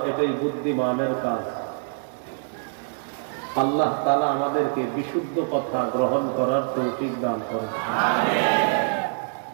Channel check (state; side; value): silent; left; digital silence